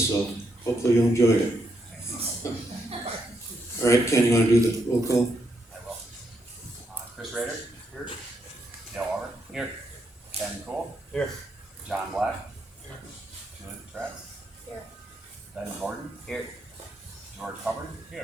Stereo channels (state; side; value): normal; both; correlation 0.79